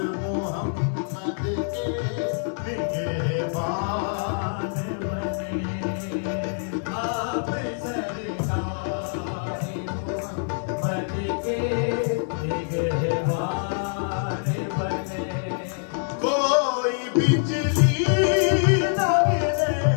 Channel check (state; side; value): silent; right; 62 dB below the other